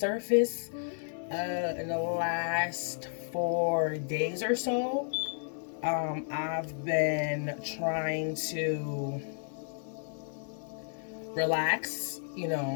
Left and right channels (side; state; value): right; silent; digital silence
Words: in the last 4 days or so. I've been trying to relax,